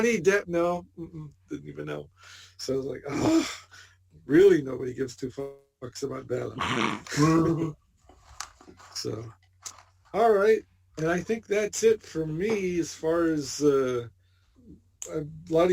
Depp. No, didn't even know. So I was like, oh, really? Nobody gives two fucks about Bella. So, all right. And I think that's it for me as far as a lot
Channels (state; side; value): identical; both; correlation 1.00